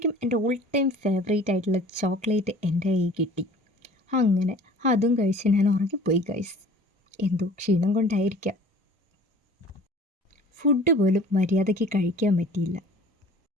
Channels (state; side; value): normal; both; correlation 0.47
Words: എൻ്റെ ഓൾ ടൈം ഫേവറേറ്റ് ആയിട്ടുള്ള ചോക്ലേറ്റ് എൻ്റെ കയ്യിൽ കിട്ടി. അങ്ങനെ അതും കഴിച്ച് ഞാൻ ഉറങ്ങിപ്പോയി ഗൈസ്. എന്തോ ക്ഷീണം കൊണ്ടായിരിക്കാം. ഫുഡ് പോലും മര്യാദയ്ക്ക് കഴിക്കാൻ പറ്റിയില്ല.